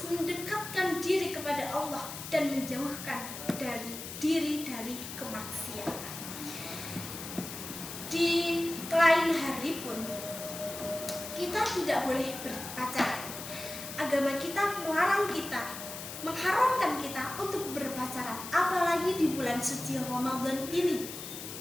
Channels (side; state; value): left; noise; hiss, 9 dB below the sound